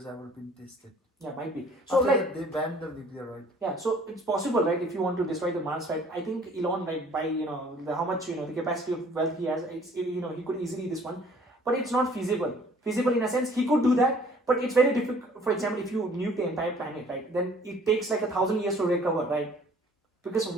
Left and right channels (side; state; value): both; normal; correlation 0.55